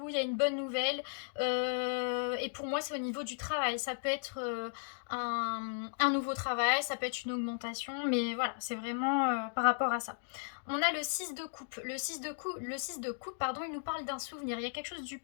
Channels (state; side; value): silent; right; digital silence